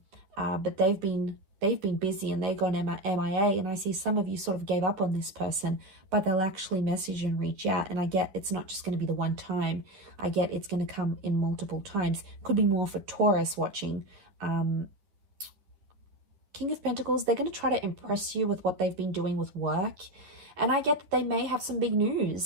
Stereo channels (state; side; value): late; left; 11 ms